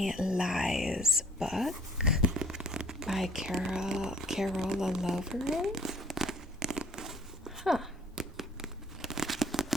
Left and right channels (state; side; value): normal; both; correlation 0.56